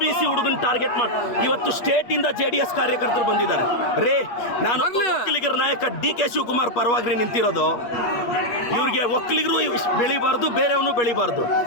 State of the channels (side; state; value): right; late; 8.4 ms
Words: ಹುಡುಗನ ಟಾರ್ಗೆಟ್ ಮಾಡಿ ಇವತ್ತು ಸ್ಟೇಟ್ ಇಂದ JDS ಕಾರ್ಯಕರ್ತರು ಬಂದಿದ್ದಾರೆ. ರೇ, ನಾನು ಒಕ್ಕಲಿಗರ ನಾಯಕ DK ಶಿವಕುಮಾರ್ ಪರವಾಗಿ ನಿಂತಿರೋದು. ಇವ್ರಿಗೆ ಒಕ್ಕಲಿಗರು ಬೆಳಿಬಾರ್ದು, ಬೇರೆಯವನು ಬೆಳಿಬಾರ್ದು.